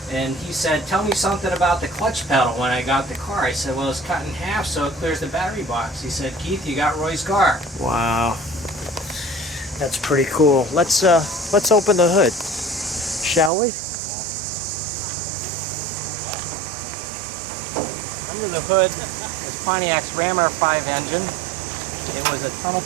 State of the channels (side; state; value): left; drops out; at 13.5 s